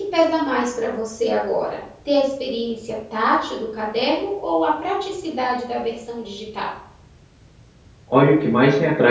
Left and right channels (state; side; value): identical; both; correlation 1.00